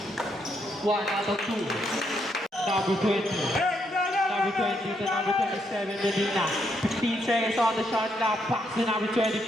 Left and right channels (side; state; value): both; normal; correlation 0.76